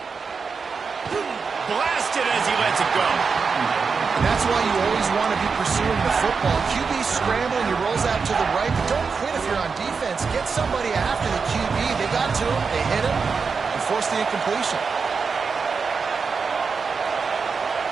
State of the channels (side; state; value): left; quieter; 5.2 dB